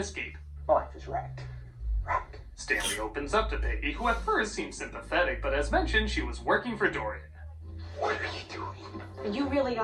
Life is wrecked. Stanley opens up to Peggy, who at first seems sympathetic, but as mentioned, she was working for Dorian. What are you doing? You really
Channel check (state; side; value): identical; both; correlation 1.00